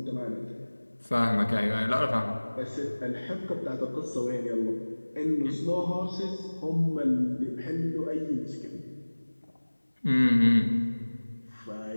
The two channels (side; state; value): both; inverted; correlation -1.00